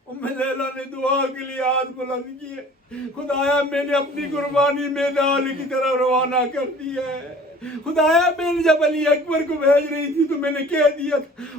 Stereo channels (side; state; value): both; normal; correlation 0.48